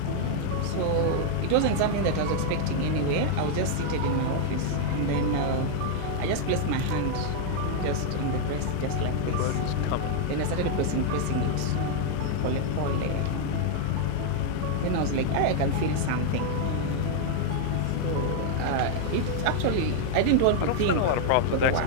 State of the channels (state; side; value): different; both; correlation 0.00